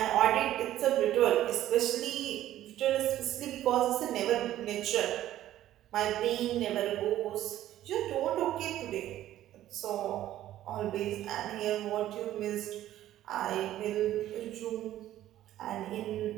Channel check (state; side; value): quieter; left; 13.2 dB